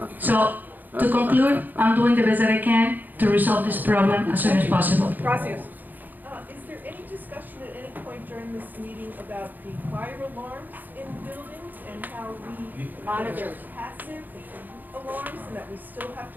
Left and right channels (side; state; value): left; late; 0.086 ms